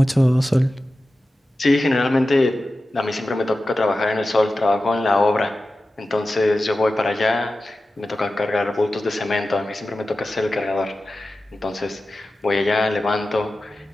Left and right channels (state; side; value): normal; both; correlation 0.94